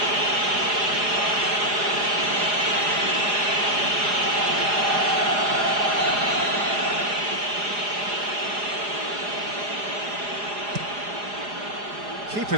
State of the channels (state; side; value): late; left; 4.9 ms